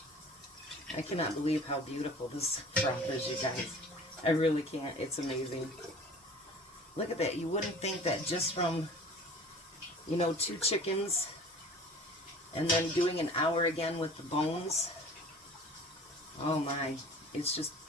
I cannot believe how beautiful this broth is, you guys. I really can't. It's amazing. Look at that. You wouldn't think that just from, 2 chickens and then doing an hour again with the bones. Oh my. It's just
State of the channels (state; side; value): normal; both; correlation 0.44